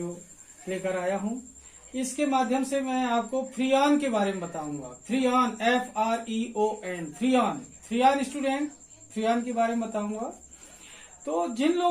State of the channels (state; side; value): identical; both; correlation 1.00